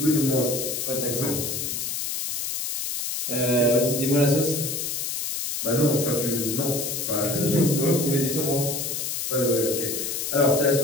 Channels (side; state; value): left; noise; hiss, 3 dB below the sound